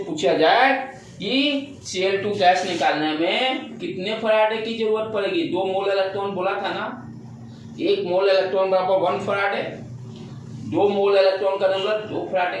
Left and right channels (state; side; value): identical; both; correlation 1.00